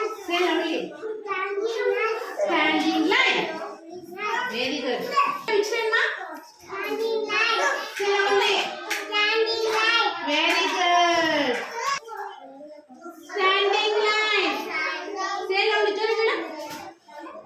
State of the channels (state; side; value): identical; both; correlation 1.00